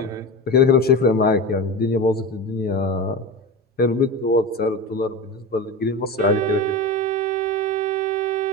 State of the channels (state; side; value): normal; both; correlation 0.26